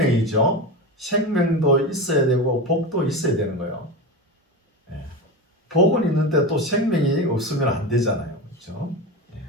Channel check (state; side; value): normal; both; correlation 0.22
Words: 생명도 있어야 되고 복도 있어야 되는 거예요. 복은 있는데 또 생명이 없으면 안 되잖아요. 그렇죠?